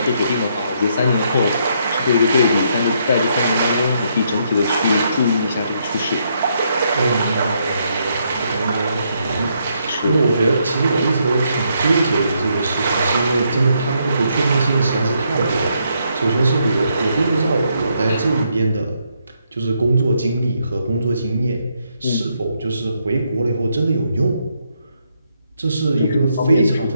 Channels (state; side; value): inverted; both; correlation -0.75